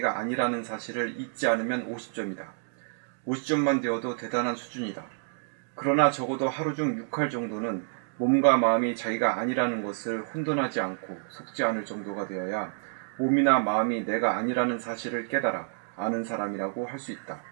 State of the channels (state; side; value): silent; left; digital silence